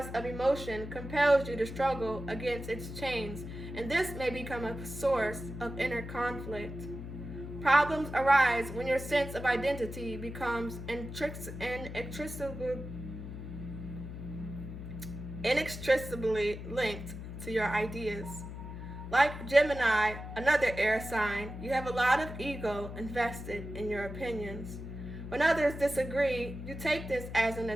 of emotion compels you to struggle against its chains, and this may become a source of inner conflict. Problems arise when your sense of identity becomes inextricably linked to your ideas. Like Gemini, another air sign, you have a lot of ego invested in your opinions. When others disagree, you take this as an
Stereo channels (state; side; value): noise; left; hum, 9 dB below the sound